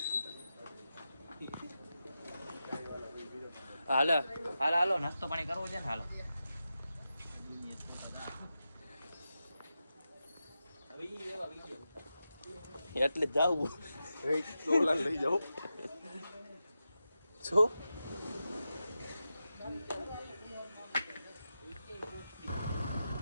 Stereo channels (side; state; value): both; inverted; correlation -0.90